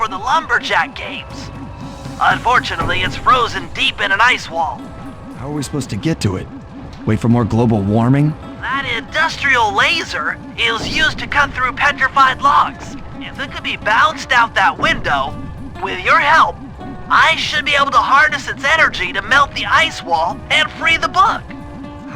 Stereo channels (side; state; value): both; identical; correlation 1.00